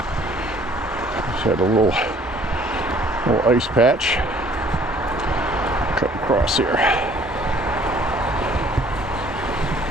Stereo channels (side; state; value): both; normal; correlation 0.57